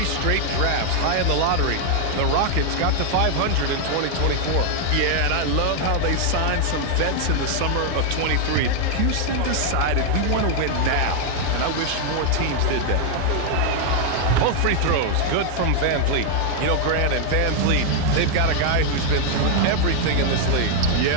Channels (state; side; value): different; both; correlation 0.00